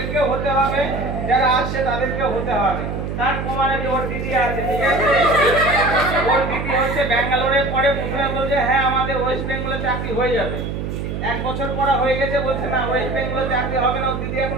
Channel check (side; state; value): right; noise; hum, 4 dB below the sound